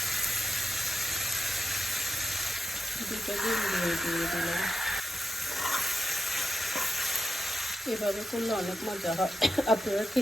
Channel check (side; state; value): both; normal; correlation 0.88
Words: দুটো ডিম দিয়ে দিলাম। এভাবে করলে অনেক মজা হয়, আপনারা